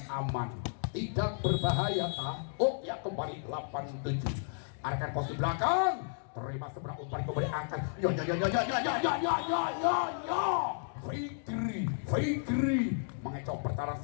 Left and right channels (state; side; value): silent; right; digital silence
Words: aman, tidak berbahaya oh ya kembali 87. Arahkan posisi belakang, terima seberang umpan kembali angkat. Fikri mengecoh pertahanan